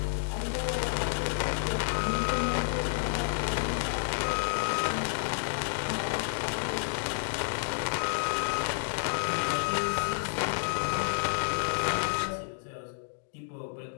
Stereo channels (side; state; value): right; silent; digital silence